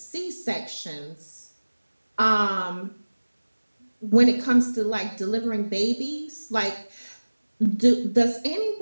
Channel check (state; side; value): inverted; both; correlation -1.00